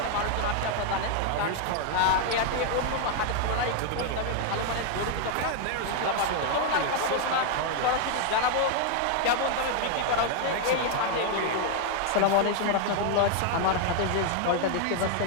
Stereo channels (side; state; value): both; different; correlation 0.00